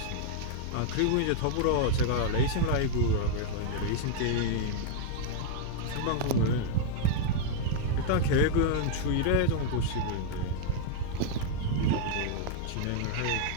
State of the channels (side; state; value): both; different; correlation -0.01